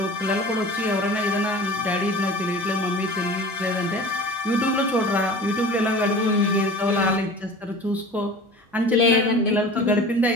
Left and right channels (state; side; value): normal; both; correlation 0.39